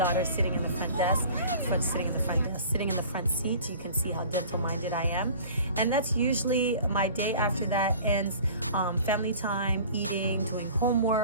sitting in the front desk, sitting in the front seat. You can see how dental minded I am. And that's usually my day. After that ends family time, eating, doing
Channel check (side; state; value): both; inverted; correlation -0.44